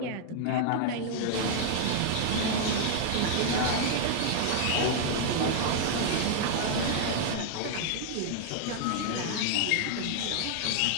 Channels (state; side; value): different; both; correlation -0.01